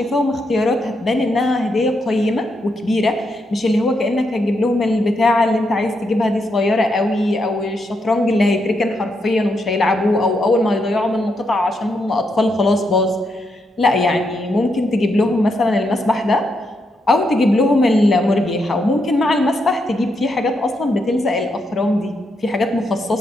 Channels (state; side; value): normal; both; correlation 0.81